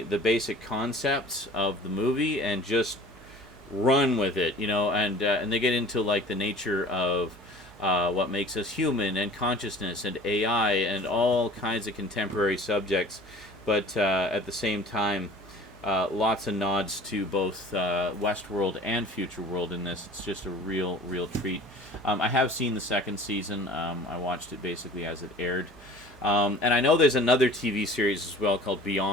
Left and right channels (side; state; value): right; noise; hum, 24 dB below the sound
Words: basic concepts of the movie and just run with it, you know, and they get into, like, the nature of what makes us human, and consciousness, and AI, and all kinds of contemporary subjects, but at the same time, lots of nods to both Westworld and Futureworld in this. It's just a real treat. I have seen the second season. I watched it basically as it aired. And I know there's another TV series as well called